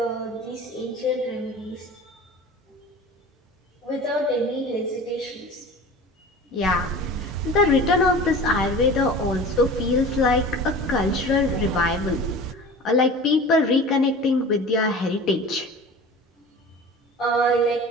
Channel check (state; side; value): normal; both; correlation 0.38